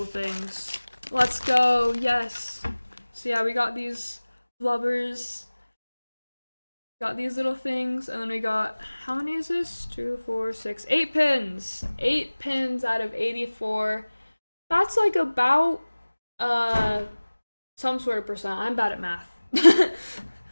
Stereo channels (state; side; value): inverted; both; correlation -1.00